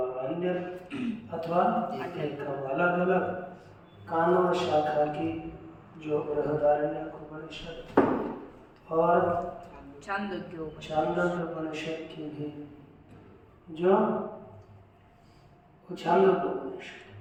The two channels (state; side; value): identical; both; correlation 1.00